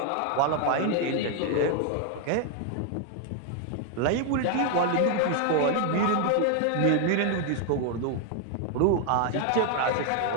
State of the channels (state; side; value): different; both; correlation 0.00